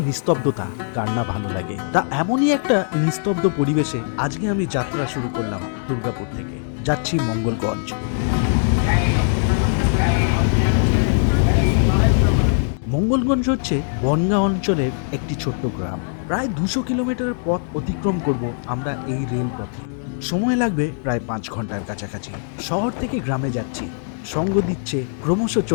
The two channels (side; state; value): right; silent; digital silence